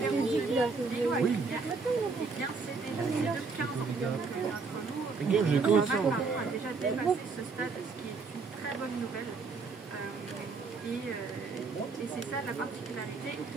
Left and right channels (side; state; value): left; quieter; 4.5 dB